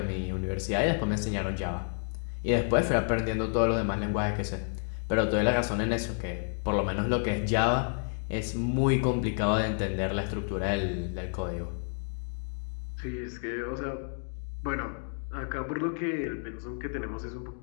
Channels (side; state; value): right; silent; 56 dB below the other